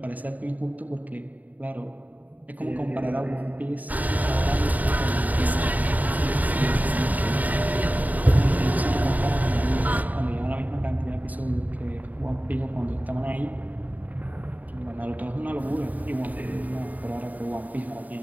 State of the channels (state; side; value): late; left; 0.077 ms